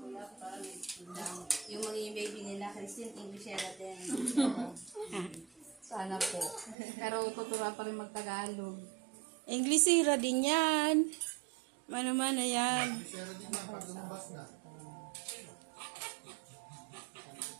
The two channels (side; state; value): left; drops out; at 6.8 s